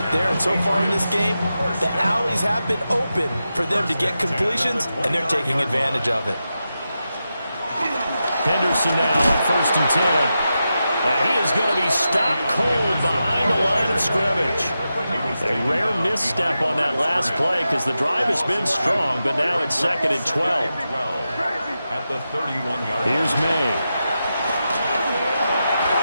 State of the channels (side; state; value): both; inverted; correlation -0.90